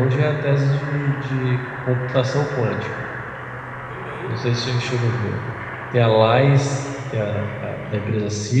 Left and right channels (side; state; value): both; identical; correlation 1.00